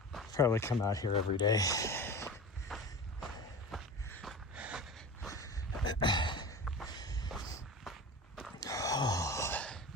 probably come out here every day.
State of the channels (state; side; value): normal; both; correlation 0.31